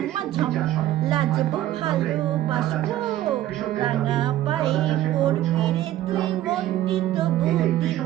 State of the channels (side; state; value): left; quieter; 13.6 dB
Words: ঝম লাজবো ভালোবাসবো, রাঙা পায়ে পড়বি রে তুই মনটি তবু